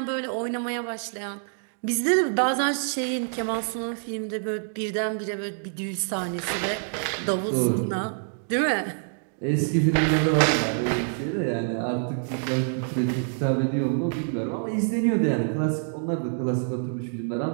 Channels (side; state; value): left; silent; digital silence